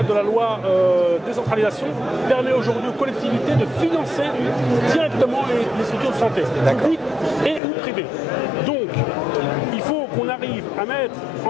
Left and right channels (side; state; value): right; drops out; at 7.6 s